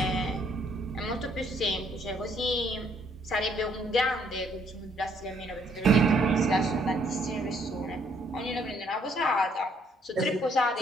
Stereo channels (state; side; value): normal; both; correlation 0.67